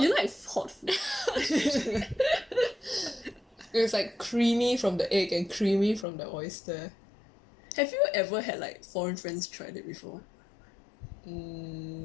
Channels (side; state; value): right; drops out; at 6.1 s